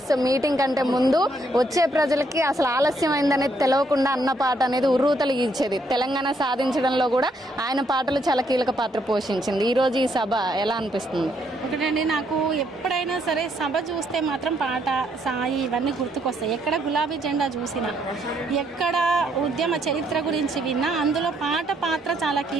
మీటింగ్ కంటే ముందు వచ్చే ప్రజలకి అసలు ఆలస్యమైందనేది తెలియకుండా అన్న పాట అనేది ఉర్రూతలిగించేది. తెలంగాణ సాధించడంలో కూడా ఆయన పాటలు చాలా కీలక పాత్ర పోషించింది. ఈరోజు ఈ సభ ఎలా అనిపిస్తుంది? ఒకటండి, నాకు ఎప్పుడైనా సరే సభ చూస్తే మాత్రం పాట, సాయి ఇవన్నీ గుర్తుకొస్తాయి. ఎక్కడ గులాబీ జెండా చూసినా, ఎక్కడ ఉద్యమ చరిత్ర గురించి విన్నా అందులో పాట పాత్ర చాలా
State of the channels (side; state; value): both; normal; correlation 0.72